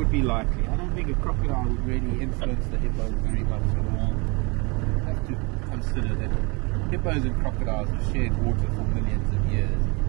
be likely. I don't think a crocodile would really influence the hippos very much at all. You have to consider that hippos and crocodiles have shared water for millions of years.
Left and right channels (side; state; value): left; quieter; 29.3 dB